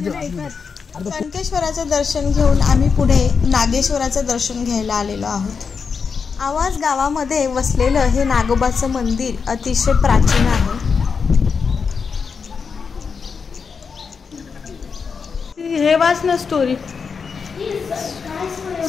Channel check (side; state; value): right; quieter; 5.6 dB